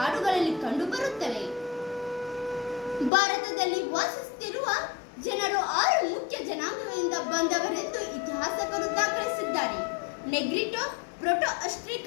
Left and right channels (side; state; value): right; drops out; at 3.1 s